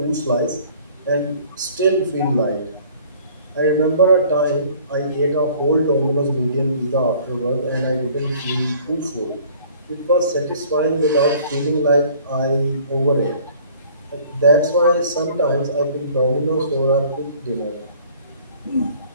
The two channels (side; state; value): both; inverted; correlation -0.53